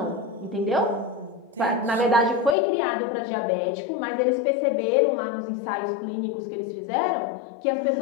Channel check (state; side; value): drops out; right; at 2.6 s